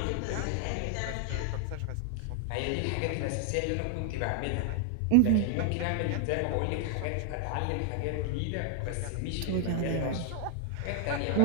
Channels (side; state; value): both; different; correlation 0.00